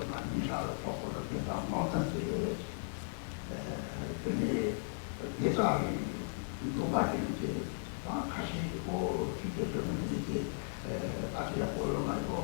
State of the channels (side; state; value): right; silent; 54 dB below the other